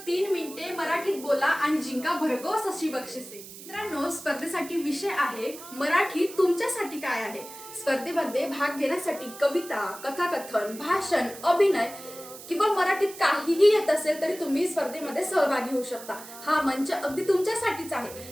3 मिनिटे मराठीत बोला आणि जिंका भरघोस अशी बक्षिसे। मित्रांनो, स्पर्धेसाठी विषय आहे मराठी तुमच्यासाठी काय आहे। स्पर्धेमध्ये भाग घेण्यासाठी कविता, कथाकथन, भाषण, अभिनय किंवा मराठीत काहीही येत असेल तरी तुम्ही स्पर्धेमध्ये सहभागी होऊ शकता। हा मंच अगदी तुमच्यासाठीच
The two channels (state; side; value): noise; right; hiss, 15 dB below the sound